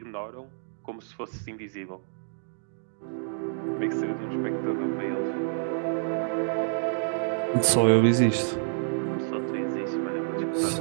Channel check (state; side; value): silent; left; digital silence